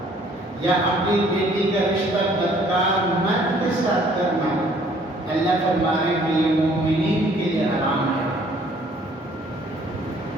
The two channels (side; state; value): both; normal; correlation 0.59